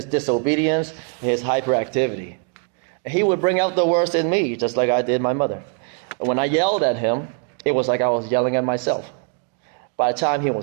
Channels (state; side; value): quieter; left; 38.2 dB